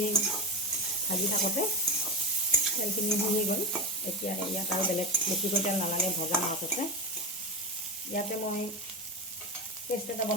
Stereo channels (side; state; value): both; normal; correlation 0.19